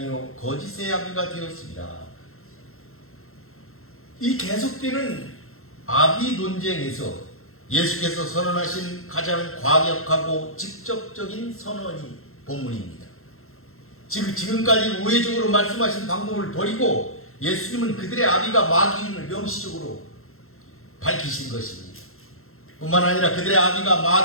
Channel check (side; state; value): right; late; 0.62 ms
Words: 거짓의 아비가 되었습니다. 이 계속되는 아비 논쟁에서 예수께서 선언하신 가장 과격하고 직접적인 선언이 본문입니다. 지금까지 우회적으로 말씀하신 방법을 버리고 예수님은 그들의 아비가 마귀임을 명시적으로 밝히신 것입니다. 뿐만 아니라 그들의 아비가